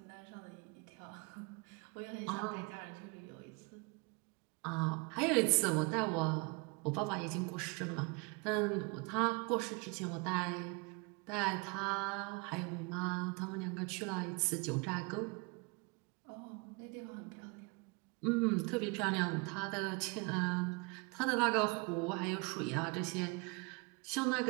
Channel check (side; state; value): left; quieter; 30.3 dB